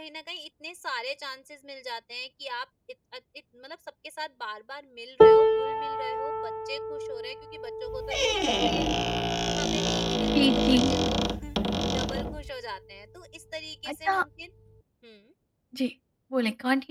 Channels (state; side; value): identical; both; correlation 1.00